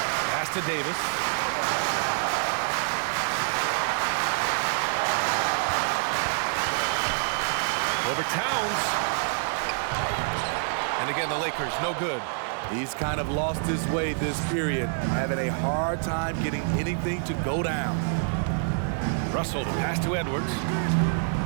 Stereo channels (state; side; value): silent; left; 58 dB below the other